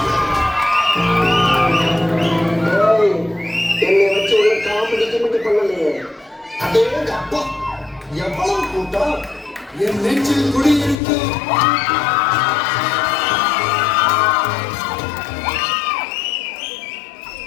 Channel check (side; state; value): right; drops out; at 11.0 s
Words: என்னை வச்சு உள்ள காமெடி கிமெடி பண்ணலையே. அதே அப்பா எவ்வளவு கூட்டம் என் நெஞ்சில் குடியிருக்கு.